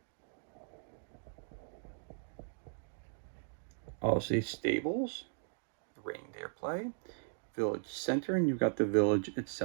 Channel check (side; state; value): left; silent; digital silence